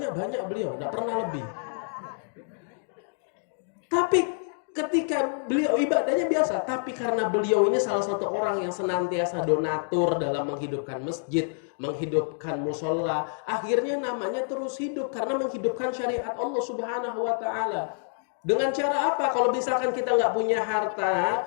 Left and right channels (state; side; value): silent; right; digital silence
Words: beliau, nggak pernah lebih. Tapi ketika beliau ibadahnya biasa, tapi karena beliau ini salah satu orang yang senantiasa donatur dalam menghidupkan masjid, menghidupkan musola, akhirnya namanya terus hidup karena menghidupkan syariat Allah Subhanahu wa Ta'ala. Dengan cara apa? Kalau misalkan kita nggak punya